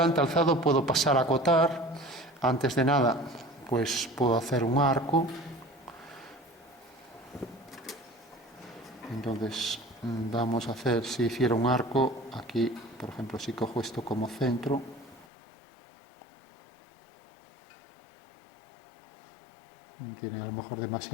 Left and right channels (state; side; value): drops out; right; at 15.2 s